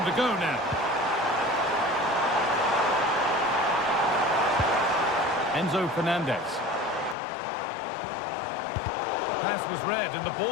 to go now. Enzo Fernandez. Pass was read and the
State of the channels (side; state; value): right; drops out; at 7.2 s